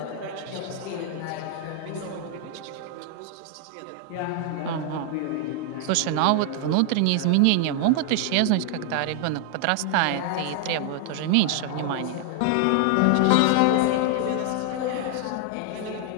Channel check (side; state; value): both; different; correlation 0.00